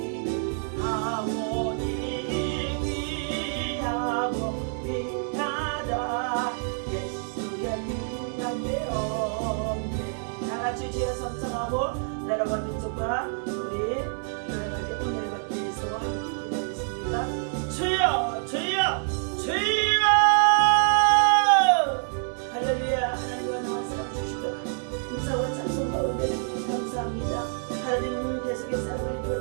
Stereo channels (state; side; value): silent; left; 59 dB below the other